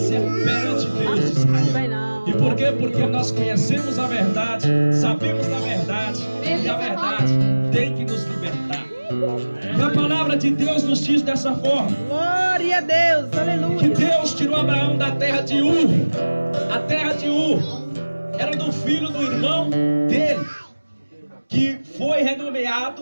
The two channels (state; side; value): inverted; both; correlation -1.00